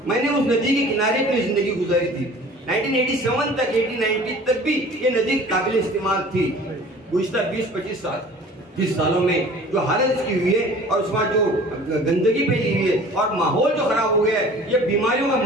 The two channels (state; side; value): normal; both; correlation 0.46